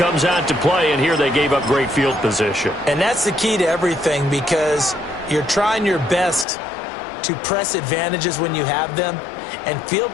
out to play, and here they gave up great field position. And that's the key to everything, because you're trying your best to press advantages when you have them, and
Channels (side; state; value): right; drops out; at 6.5 s